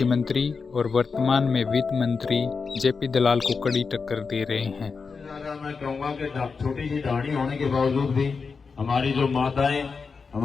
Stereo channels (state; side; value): quieter; right; 5.0 dB